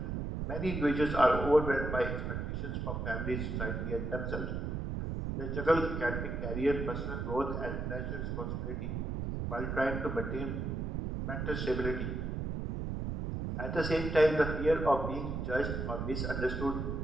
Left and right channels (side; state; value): right; noise; rumble, 3 dB below the sound